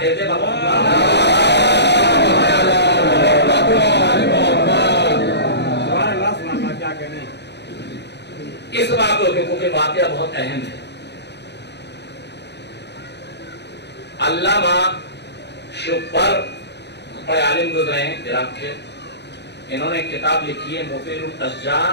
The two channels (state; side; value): late; right; 0.50 ms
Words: دیتے بابا. کیا کہنے اس واقعے کے کیونکہ واقعہ بہت اہم ہے. علامہ شبر بڑے عالم گزرے ہیں عراق کے، انہوں نے کتاب لکھی ہے مفید